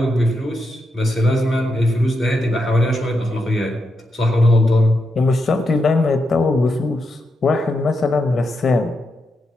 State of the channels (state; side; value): normal; both; correlation 0.84